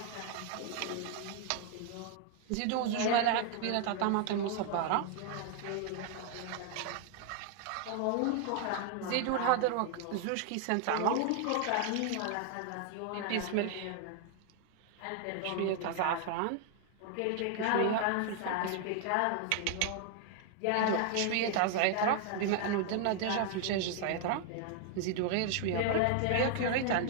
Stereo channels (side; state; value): both; different; correlation 0.00